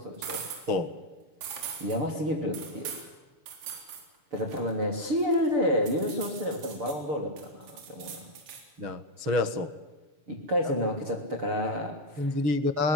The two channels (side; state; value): left; late; 6.9 ms